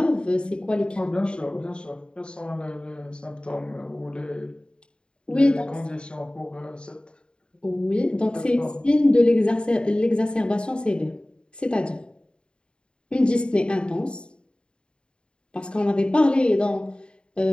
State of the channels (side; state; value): right; late; 0.052 ms